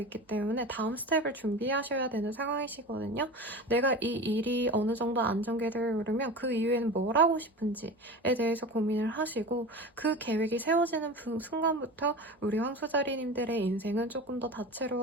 때문에 다음 스텝을 준비하셔야 되는 상황이시거든요. 내가 이 일이 어느 정도 안정기를 오르면 그 이후에는 뭘 하고 싶은지에 대해서 고민을 하시고 그 계획이 세워지는 순간부터 우리 황소자리님들의 인생은 조금 더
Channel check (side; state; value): both; normal; correlation 0.31